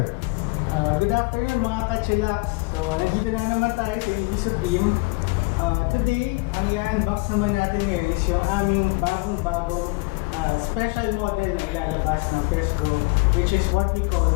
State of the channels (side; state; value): right; quieter; 27.0 dB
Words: Good afternoon mga ka-chillax. So, nandito na naman tayo sa EV Supreme. Today, ang i-unbox naman natin ngayon is yung aming bagong-bagong special model na ilalabas ng PESGO, which is what we call